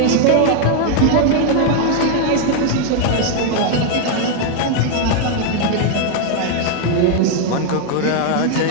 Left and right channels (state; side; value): different; both; correlation 0.01